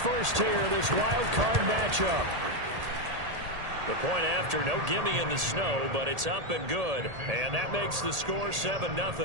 here, this wild card matchup. The point after, no gimme in the snow, but it's up and good. And that makes the score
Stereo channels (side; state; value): left; late; 1.8 ms